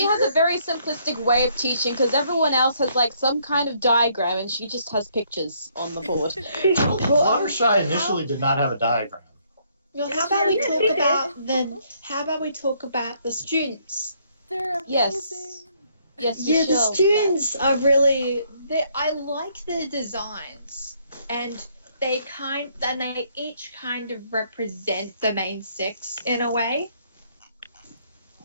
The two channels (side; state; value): both; inverted; correlation -0.68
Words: has a very simplistic way of teaching because everyone else has like some kind of diagram and she just has pictures on the board. Fluttershy initially did not have a diagram. Well, how about we talk about the students? They're amazing. Yes, yeah, the students are really. I like their designs, and they each kind of represent the main six in a way.